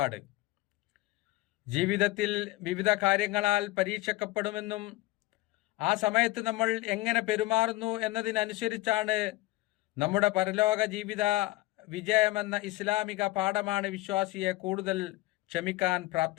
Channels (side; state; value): right; quieter; 19.1 dB